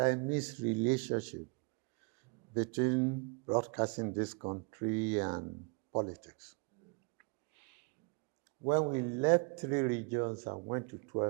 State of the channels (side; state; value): left; quieter; 32.4 dB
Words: relationship between broadcasting in this country and politics. When we left 3 regions and went to